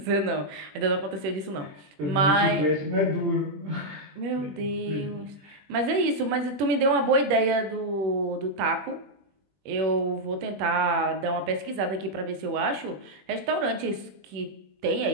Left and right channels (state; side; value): late; left; 20 ms